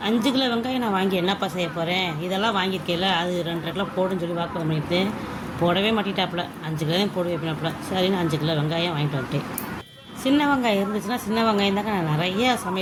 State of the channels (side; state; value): both; identical; correlation 1.00